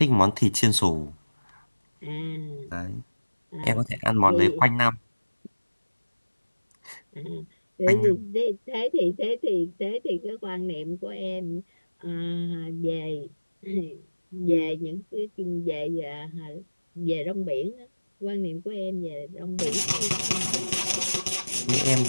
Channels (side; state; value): both; inverted; correlation -1.00